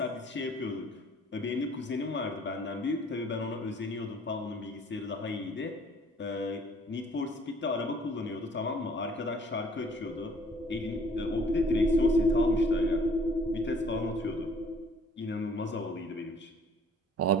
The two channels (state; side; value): normal; both; correlation 0.56